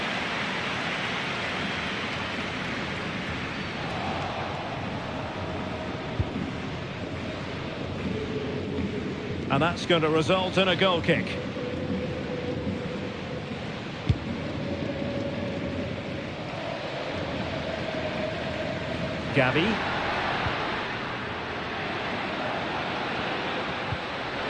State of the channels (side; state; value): both; identical; correlation 1.00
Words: And that's going to result in a goal kick. Gavi.